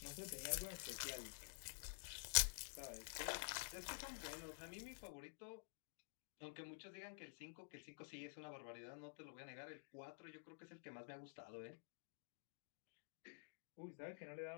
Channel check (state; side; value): silent; right; digital silence